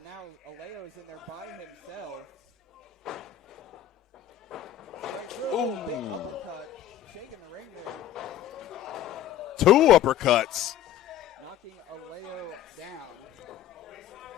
now Alao is in there by himself. Straight through. Oh, big uppercut. Shaking the ring there. 2 uppercuts. Knocking Alao down.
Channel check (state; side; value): quieter; right; 11.4 dB